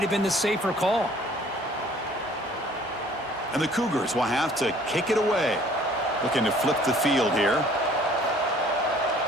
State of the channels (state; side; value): normal; both; correlation 0.55